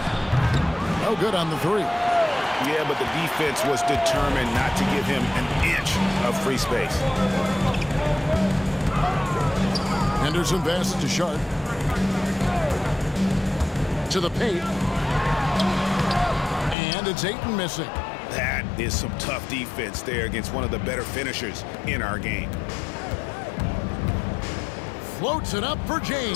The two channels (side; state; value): right; drops out; at 16.8 s